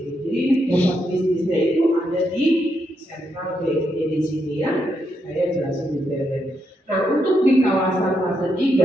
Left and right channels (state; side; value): normal; both; correlation 0.80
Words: Jadi pusat bisnisnya itu ada di Central BSD di sini ya. Saya jelasin detailnya. Nah, untuk di kawasan fase